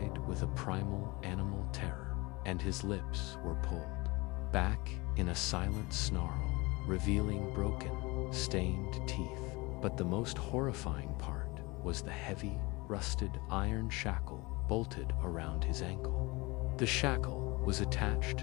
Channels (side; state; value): right; quieter; 24.2 dB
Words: with a primal animal terror, and his lips were pulled back in a silent snarl, revealing broken, stained teeth. But the most horrifying part was the heavy, rusted iron shackle bolted around his ankle. The shackle was